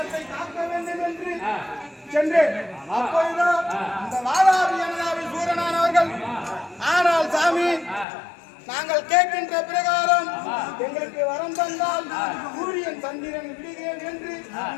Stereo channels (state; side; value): drops out; right; at 8.1 s